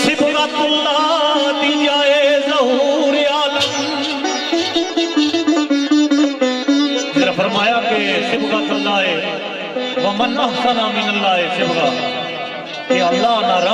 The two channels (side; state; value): both; identical; correlation 1.00